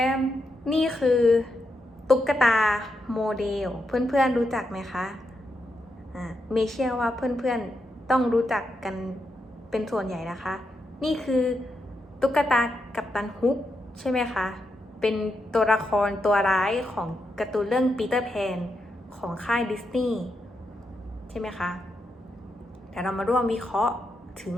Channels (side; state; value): both; normal; correlation 0.84